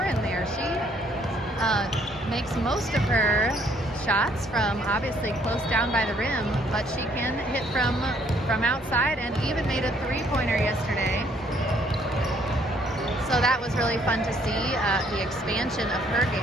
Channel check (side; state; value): both; normal; correlation 0.64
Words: there. She makes most of her shots from obviously close down by the rim, but she can hit from outside, and even made a 3-pointer yesterday. So that was really fun to see the expansion of her